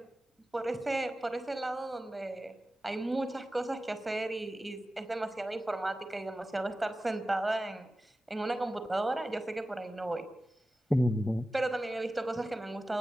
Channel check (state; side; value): normal; both; correlation 0.95